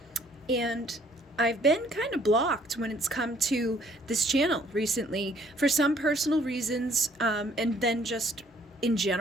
And I've been kind of blocked when it's come to this channel recently for some personal reasons, and then just in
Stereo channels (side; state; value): both; normal; correlation 0.61